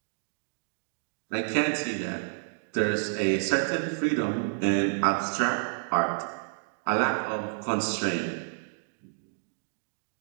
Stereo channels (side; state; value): left; silent; digital silence